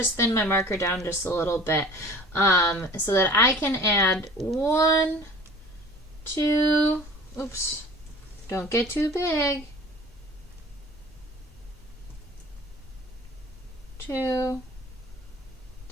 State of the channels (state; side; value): normal; both; correlation 0.44